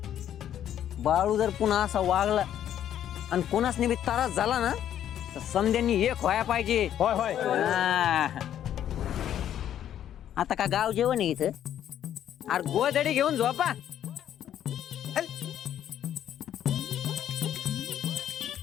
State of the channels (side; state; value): right; quieter; 10.6 dB